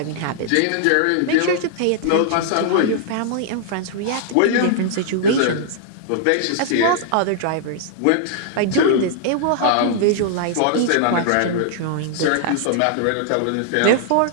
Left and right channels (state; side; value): different; both; correlation -0.01